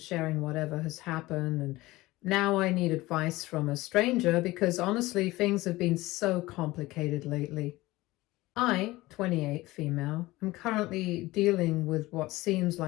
sharing whatever has happened, and now I need advice from a stranger because honestly, things have been so complicated lately. I, 28 female, am currently dealing with what seems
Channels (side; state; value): right; quieter; 19.2 dB